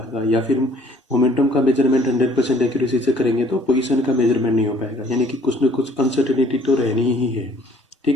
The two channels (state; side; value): normal; both; correlation 0.58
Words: या फिर मोमेंटम का मेजरमेंट 100% एक्यूरेसी से करेंगे तो पोजीशन का मेजरमेंट नहीं हो पाएगा, यानी कि कुछ न कुछ अनसर्टेनिटी तो रहनी ही है।